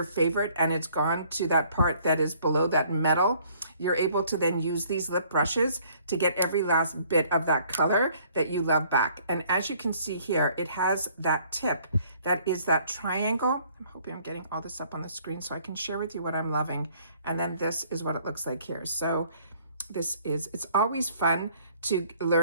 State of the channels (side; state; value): both; inverted; correlation -0.60